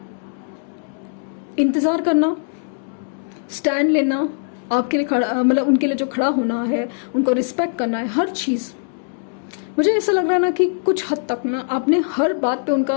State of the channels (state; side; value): silent; right; digital silence